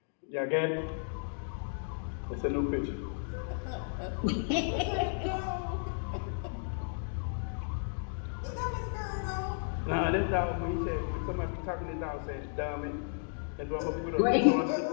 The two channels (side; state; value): right; silent; digital silence